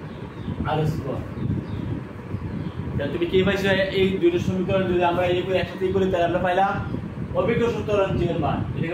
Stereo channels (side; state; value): both; identical; correlation 1.00